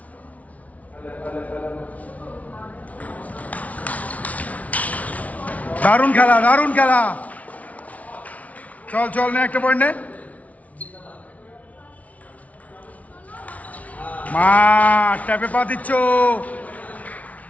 দারুণ খেলা, চল নে, একটা পয়েন্ট নে মা, ট্যাপে পা দিচ্ছ,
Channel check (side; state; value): right; late; 0.069 ms